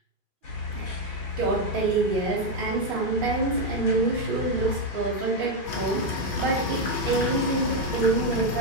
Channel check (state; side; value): late; left; 2.5 ms